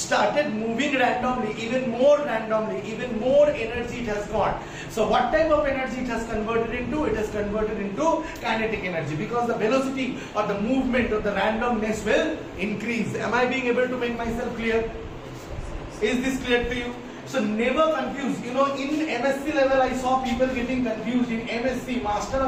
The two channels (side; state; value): both; identical; correlation 1.00